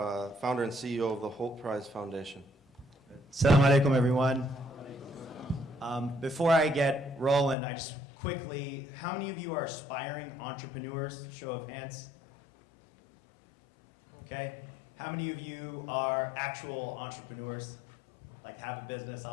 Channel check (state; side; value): drops out; right; at 7.6 s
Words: and CEO of the Hult Prize Foundation. Assalamu alaikum, everyone. Before I get rolling, I just quickly, how many of you are aspiring entrepreneurs? Show of hands. Okay. How many of you are actual entrepreneurs, like have a business